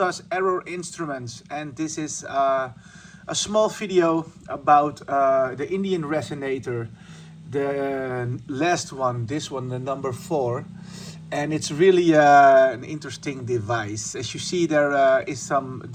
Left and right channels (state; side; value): identical; both; correlation 1.00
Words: Error Instruments, and this is a small video about the Indian resonator, the last one, this one, the number 4. And it's really an interesting device. As you see, there is some